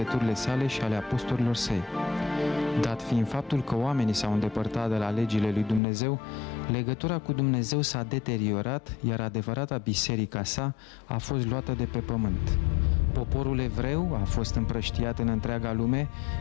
sale și ale apostolilor săi. Dat fiind faptul că oamenii s-au îndepărtat de la legile lui Dumnezeu, legătura cu Dumnezeu s-a deteriorat, iar adevărata biserica sa a fost luată de pe pământ. Poporul evreu a fost împrăștiat în întreaga lume,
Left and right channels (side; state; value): right; drops out; at 5.8 s